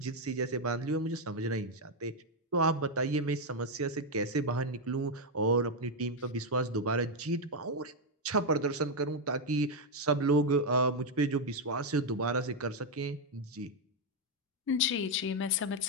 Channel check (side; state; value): both; normal; correlation 0.02